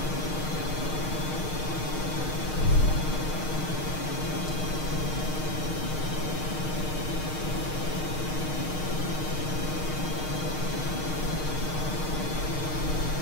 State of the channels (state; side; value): late; right; 6.5 ms